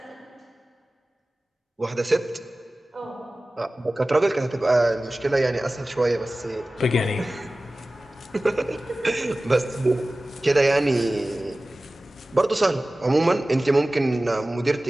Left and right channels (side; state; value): both; normal; correlation 0.97